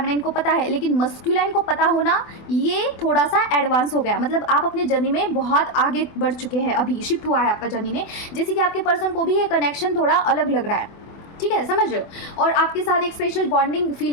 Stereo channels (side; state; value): right; late; 24 ms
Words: को पता है, लेकिन मस्कुलाइन को पता होना ये थोड़ा सा एडवांस हो गया, मतलब आप अपने जर्नी में बहुत आगे बढ़ चुके हैं, अभी शिफ्ट हुआ है आपका जर्नी में, जैसे कि आपके पर्सन को भी ये कनेक्शन थोड़ा अलग लग रहा है, ठीक है, समझ रहे हो, और आपके साथ एक स्पेशल बॉन्डिंग फील